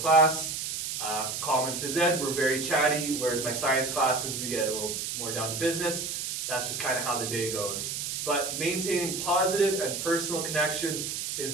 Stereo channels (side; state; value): right; noise; hiss, 4 dB below the sound